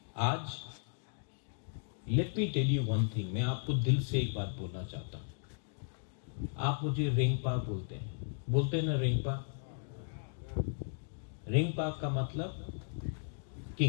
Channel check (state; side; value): silent; right; digital silence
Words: आज let me tell you one thing, मैं आपको दिल से एक बात बोलना चाहता हूं। आप मुझे रेंगपा बोलते हैं ना, रेंगपा। रेंगपा का मतलब